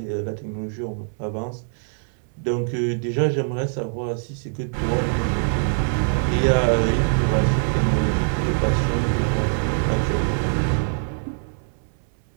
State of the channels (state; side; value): silent; left; digital silence